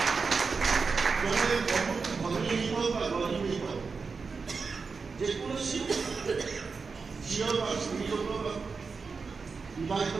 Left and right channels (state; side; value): quieter; left; 4.8 dB